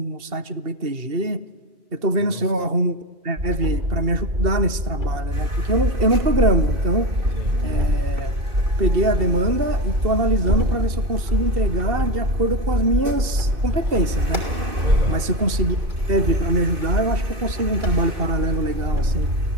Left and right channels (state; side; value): late; left; 2.7 ms